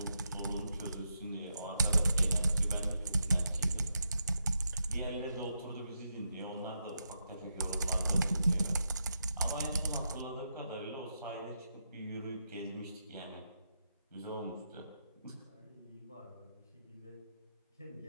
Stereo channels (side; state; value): both; inverted; correlation -0.84